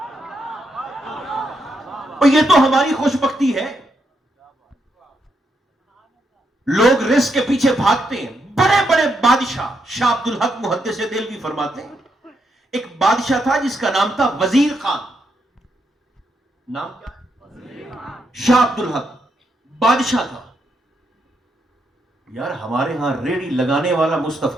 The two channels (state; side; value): normal; both; correlation 0.80